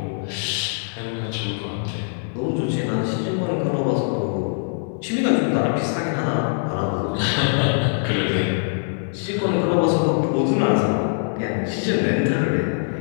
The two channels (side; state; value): right; silent; digital silence